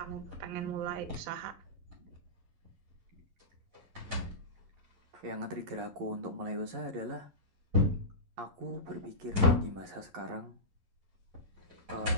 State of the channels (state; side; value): late; left; 11 ms